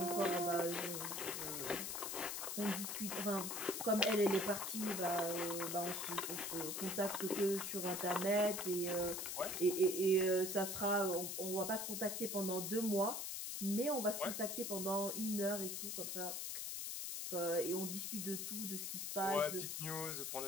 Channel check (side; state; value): left; noise; hiss, 3 dB below the sound